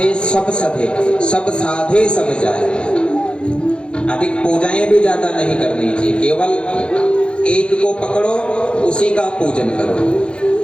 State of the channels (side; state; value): right; late; 0.055 ms